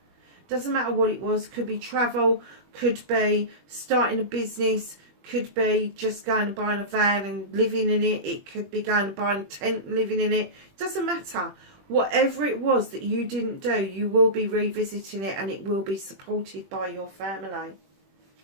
Doesn't matter what it was. Could be travel, could be starting a business, could be just going and buying a van and living in it. It could be going and buying a tent and living in it. Doesn't matter. Whatever it was that you didn't do, you will be revisiting it, and it will be supported by your family.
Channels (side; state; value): left; late; 21 ms